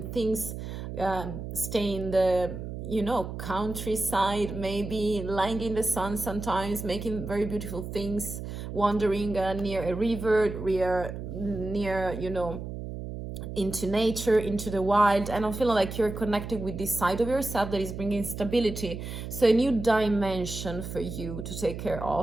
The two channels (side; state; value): right; noise; hum, 8 dB below the sound